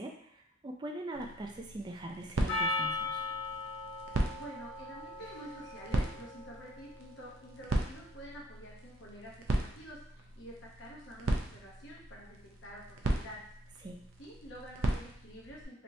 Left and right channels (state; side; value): normal; both; correlation 0.64